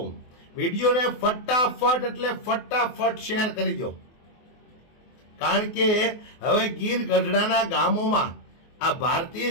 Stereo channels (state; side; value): late; right; 24 ms